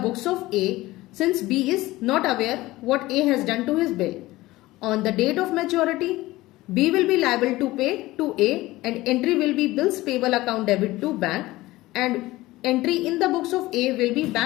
of A, since B is not aware what A has done to his bill. On the date of maturity, B will be liable to pay to A and entry will be bills payable account debit to bank, and entry in the books of A will be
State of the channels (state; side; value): quieter; right; 18.4 dB